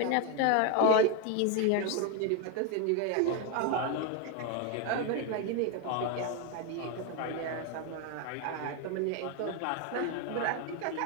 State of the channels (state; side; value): different; both; correlation 0.02